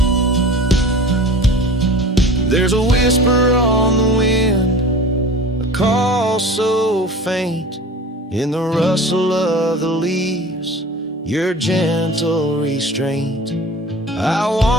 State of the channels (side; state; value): both; normal; correlation 0.39